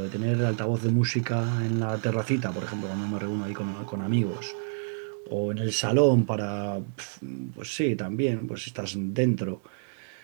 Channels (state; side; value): silent; left; 59 dB below the other